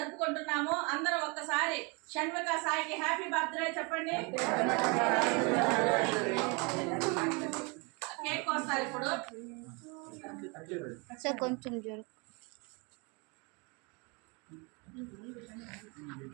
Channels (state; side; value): quieter; left; 30.6 dB